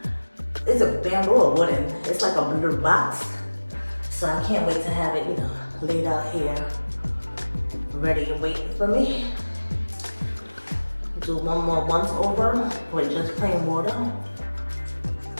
it's a bamboo or wooden. It's like a little box. So I can't wait to have it, you know, laid out here, ready and waiting for me. Do one more once over with just plain water.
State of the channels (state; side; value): inverted; both; correlation -1.00